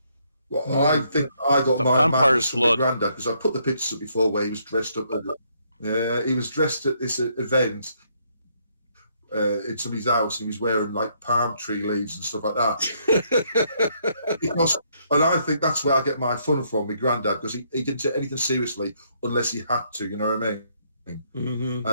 Well, I think I got my madness from my granddad, because I put the pictures up before where he was dressed up. He was dressed at this event in somebody's house, and he was wearing like palm tree leaves and stuff like that. And I think that's where I get my fun from, my granddad, because he didn't take anything seriously unless he had to, you know what I mean? Mm-hmm.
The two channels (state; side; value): inverted; both; correlation -0.71